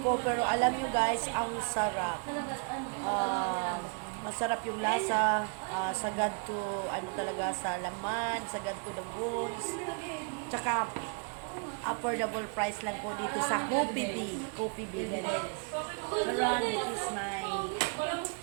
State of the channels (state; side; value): quieter; left; 39.2 dB